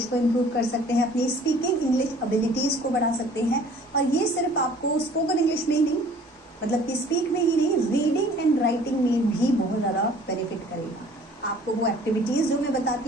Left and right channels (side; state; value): both; normal; correlation 0.52